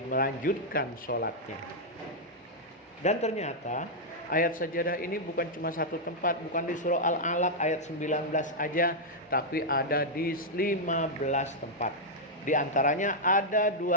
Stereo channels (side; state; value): both; normal; correlation -0.05